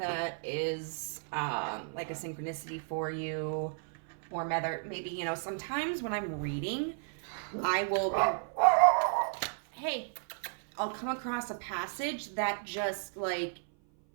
is like a synchronicity for you. Or maybe, sometimes when I'm reading, I will I'll come across a passage that just, like,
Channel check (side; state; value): left; silent; 55 dB below the other